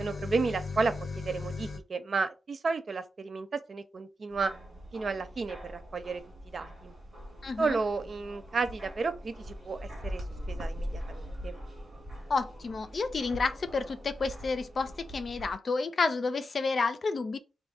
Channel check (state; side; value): normal; both; correlation 0.87